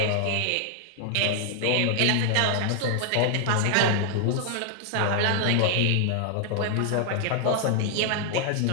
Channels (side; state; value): both; different; correlation 0.00